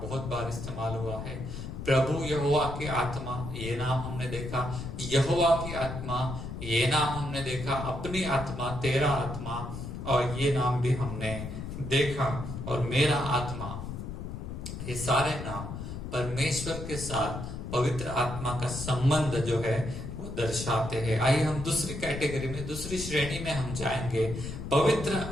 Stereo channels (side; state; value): left; noise; rumble, 7 dB below the sound